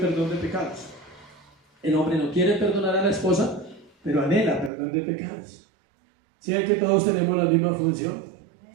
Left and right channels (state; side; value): drops out; left; at 4.7 s